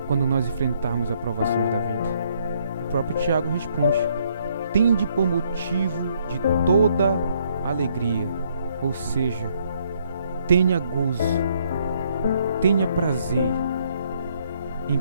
quando nós enfrentarmos as provações da vida? O próprio Tiago responde: tende por motivo de toda alegria, ou seja, tenha gozo, tenha prazer em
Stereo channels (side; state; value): both; inverted; correlation -0.69